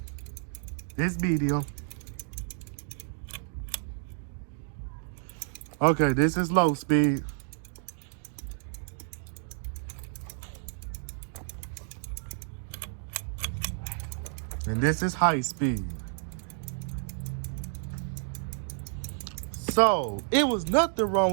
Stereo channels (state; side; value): silent; left; digital silence